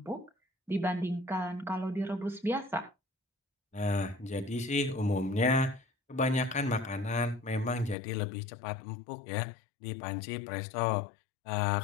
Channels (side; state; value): right; drops out; at 8.0 s